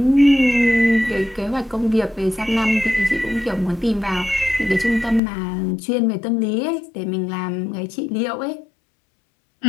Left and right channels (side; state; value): right; drops out; at 5.2 s